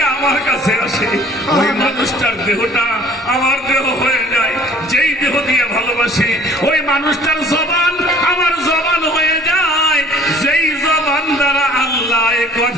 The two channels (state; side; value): normal; both; correlation 0.53